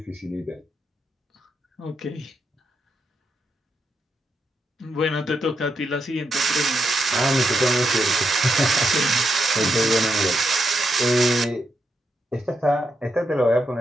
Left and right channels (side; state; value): both; normal; correlation 0.82